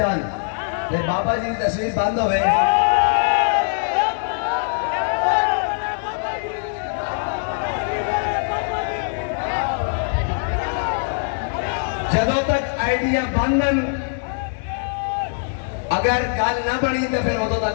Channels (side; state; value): right; silent; digital silence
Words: لیکن بابا جی کی تصویر بند ہوئے، جدوں تک آئیڈیا بندن، اگر گل نہ بنی تو پھر ادوں